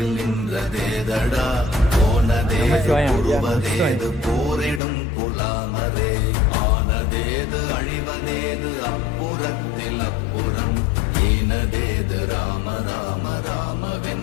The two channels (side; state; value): right; drops out; at 4.8 s